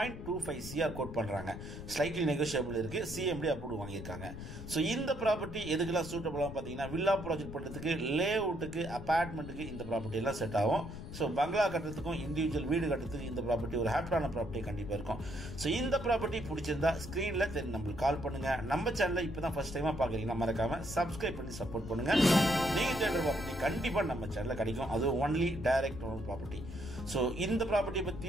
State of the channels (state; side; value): noise; left; rumble, 10 dB below the sound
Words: CR கோட் பண்ணுறாங்க. ஸ்லைட்லி நெகோஷியபிள் இருக்குது. சிஎம்டி அப்ரூவ் வாங்கியிருக்காங்க. ஸோ இந்த ப்ராப்பர்ட்டி எதுக்கெல்லாம் சூட்டபுளாக பார்த்தீங்கன்னா வில்லா ப்ராஜெக்ட் பண்ணுறதுக்கு, லே அவுட்டுக்கு, அப்பார்ட்மெண்ட்டுக்கு இந்த ப்ராப்பர்ட்டி எல்லாம் செட் ஆகும். ஸோ பங்களா கட்டுறதுக்கும் இண்டிவிஜுவல் வீடு கட்டுறதுக்கு இந்த ப்ராப்பர்ட்டி ஒரு ஹாப்பியான ப்ராப்பர்ட்டி கண்டிப்பாக இருக்கும். ஸோ இந்த ப்ராப்பர்ட்டி பிடிச்சிருந்தா ஸ்க்ரீனில் நம்மளுக்கு கால் பண்ணுங்கள். நம்ம சேனலில் இப்போ தான் ஃபர்ஸ்ட் டைமாக பார்க்குறீங்கன்னா மறக்காமல் சப்ஸ்கிரைப் பண்ணி சப்போர்ட் பண்ணுங்கள். நீங்கள் தேடுற ப்ராப்பர்ட்டி கண்டிப்பாக நம்ம சேனலில் கிடைக்கும். அது only direct owner property. So இந்த ப்ராப்பர்ட்டியை